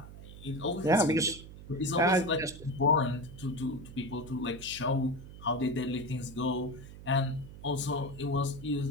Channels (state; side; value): noise; right; hum, 15 dB below the sound